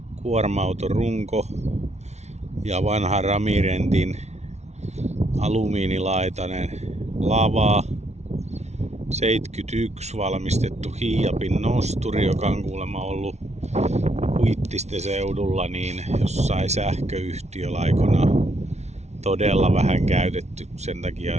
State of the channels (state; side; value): late; left; 0.32 ms